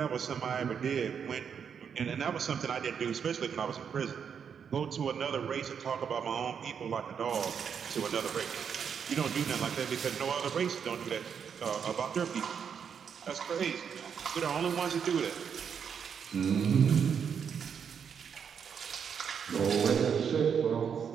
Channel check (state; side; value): quieter; left; 7.2 dB